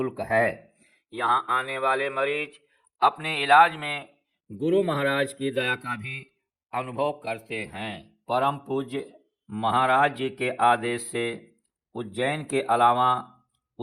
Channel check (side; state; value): both; identical; correlation 1.00